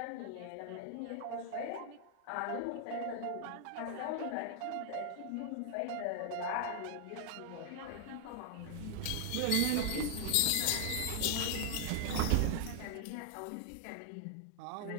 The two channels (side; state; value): both; different; correlation 0.00